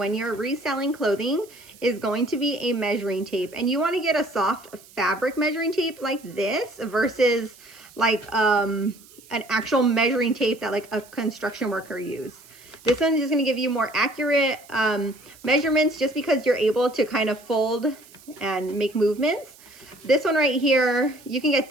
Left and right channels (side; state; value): right; noise; hiss, 24 dB below the sound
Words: you're reselling clothing is going to be a measuring tape. And you want to get a soft fabric measuring tape like this versus like an actual measuring tape that like a construction worker uses. This one is just going to give you more accurate measurements just because you're able to kind of fold and make movements. This one right here, you can get